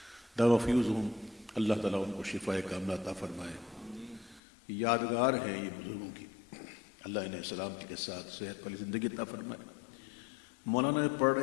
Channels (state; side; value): drops out; right; at 4.4 s